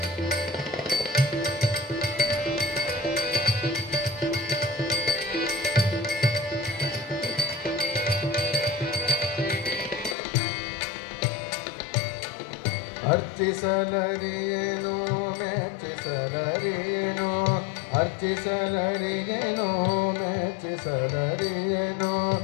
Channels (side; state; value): right; drops out; at 10.2 s